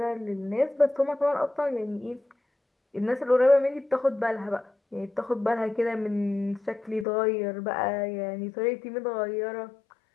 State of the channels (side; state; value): right; drops out; at 7.1 s